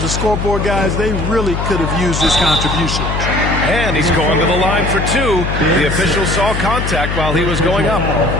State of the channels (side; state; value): left; noise; hum, 3 dB below the sound